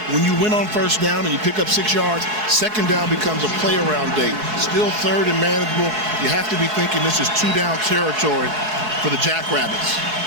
When you win on 1st down and you pick up 6 yards, 2nd down becomes a play around day. Still 3rd and manageable. You have to be thinking this is 2-down territory for the Jackrabbits.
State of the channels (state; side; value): late; left; 4.7 ms